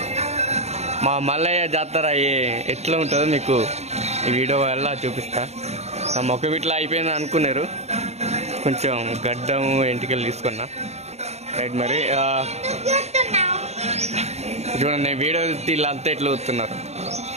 మా మల్లయ్య జాతర ఎట్లా ఉంటుందో మీకు ఈ వీడియో వల్ల చూపిస్తా. నా మొక్క ఇట్లా అయిపోయింది అనుకున్నారు, కొంచెం గడ్డం ఎంటికలు తీసుకున్నా. రైట్ మరి చూడండి, వీడియో వీళ్ళంతా ఎట్లా వస్తున్నారు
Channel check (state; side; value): late; left; 0.31 ms